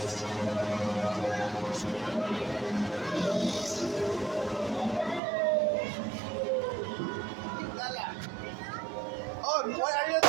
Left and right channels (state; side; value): drops out; left; at 5.2 s